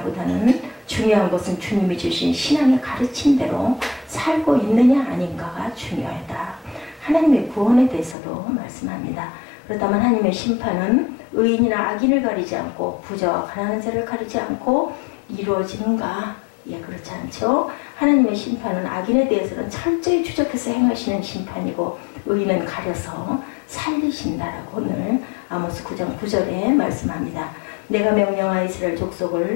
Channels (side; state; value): right; drops out; at 8.2 s